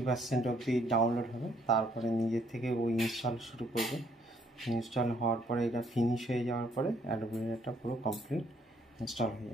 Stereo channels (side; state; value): both; normal; correlation 0.67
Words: অবধি ডাউনলোড হবে, তারপরে নিজের থেকে ওই ইনস্টল শুরু করবে। ইনস্টল হওয়ার পরে এটা ফিনিশ হয়ে যাওয়ার পরে অ্যাডোব রিডারটা পুরো কমপ্লিট ইনস্টল হয়ে